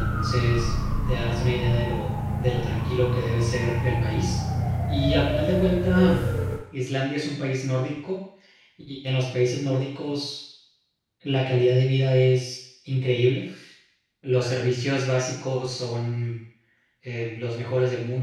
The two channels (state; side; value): identical; both; correlation 1.00